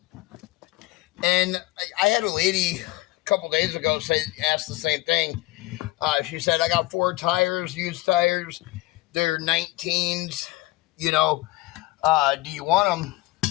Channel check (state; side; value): quieter; right; 19.1 dB